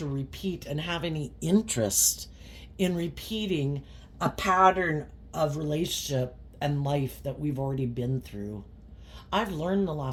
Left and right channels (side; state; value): both; identical; correlation 1.00